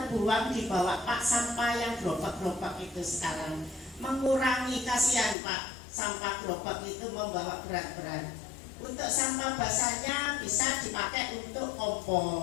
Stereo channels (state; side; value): drops out; right; at 5.4 s